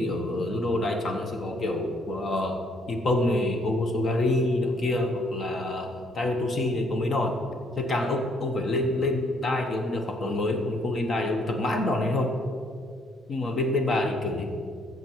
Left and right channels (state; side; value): normal; both; correlation 0.67